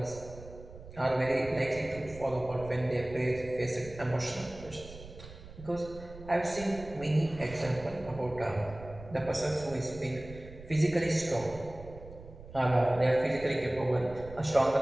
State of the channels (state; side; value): noise; right; rumble, 16 dB below the sound